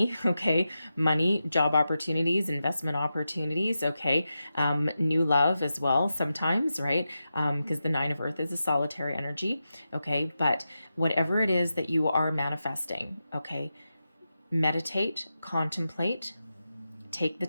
Okay, money, job opportunities, investment opportunities. Okay, new love as well sometimes, right? Because the 9 of earth is a solitary energy. Okay, but whatever it is that you are manifesting, okay, meditate, contemplate, take the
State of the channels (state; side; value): inverted; both; correlation -0.90